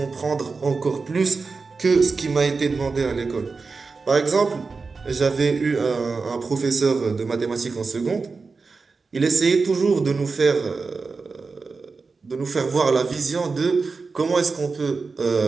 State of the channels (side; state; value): left; quieter; 4.4 dB